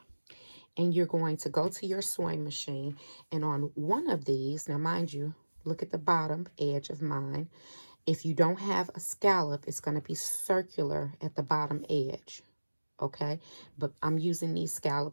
And you're going to go to your sewing machine, and on one of these, now mind you, look at the bottom edge of mine. If you don't have a scallop, it's going to be circular at the bottom edge. Okay, but I'm using these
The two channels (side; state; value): both; inverted; correlation -1.00